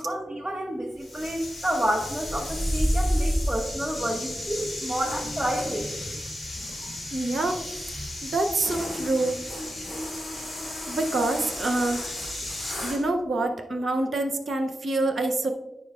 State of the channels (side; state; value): both; normal; correlation 0.89